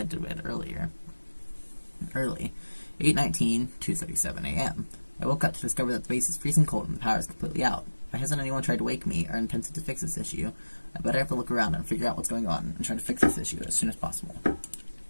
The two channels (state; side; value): inverted; both; correlation -1.00